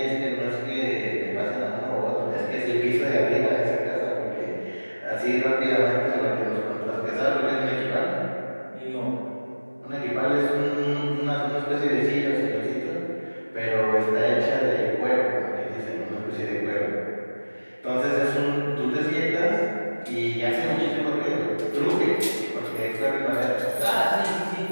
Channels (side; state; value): both; inverted; correlation -1.00